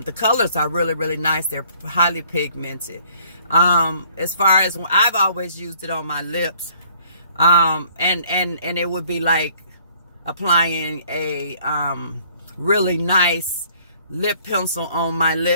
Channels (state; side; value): inverted; both; correlation -0.59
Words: colors are really, really nice. They're highly pigmented. As far as I've always used it on my lips. And it would be like applying a really nice lip pencil on my